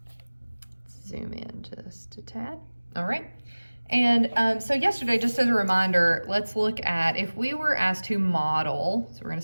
Let's zoom in just a tad. All right. And so yesterday, just as a reminder, let's look at if we were asked to model. So we're going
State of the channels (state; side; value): inverted; both; correlation -1.00